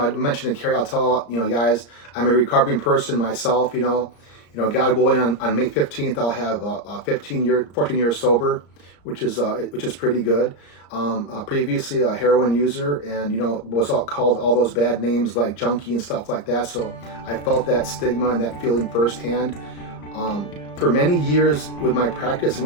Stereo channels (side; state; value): right; late; 34 ms